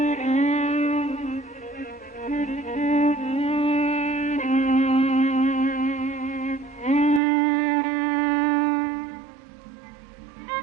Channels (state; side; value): drops out; left; at 7.2 s